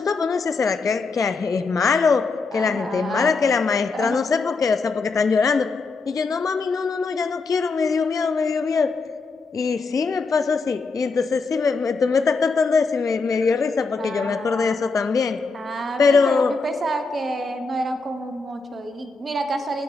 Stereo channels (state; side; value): quieter; right; 4.1 dB